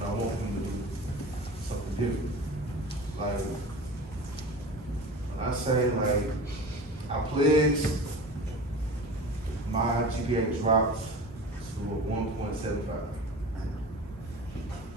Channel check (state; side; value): normal; both; correlation 0.35